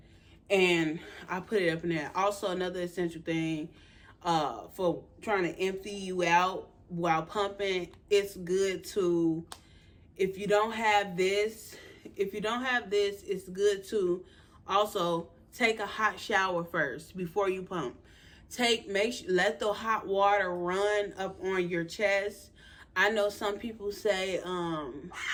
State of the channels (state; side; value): identical; both; correlation 1.00